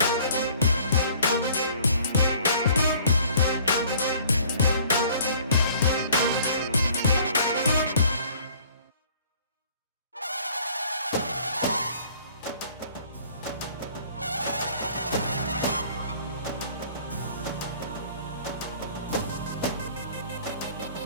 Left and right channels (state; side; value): inverted; both; correlation -0.54